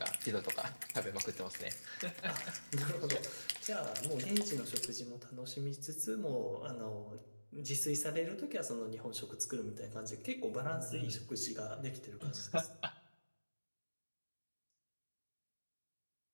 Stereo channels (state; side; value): inverted; both; correlation -1.00